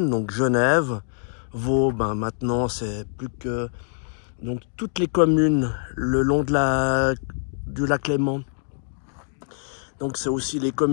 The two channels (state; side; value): silent; right; 61 dB below the other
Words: donc Genève, Vaud, ben maintenant c'est plus que donc toutes les communes le long du lac Léman. Donc c'est aussi les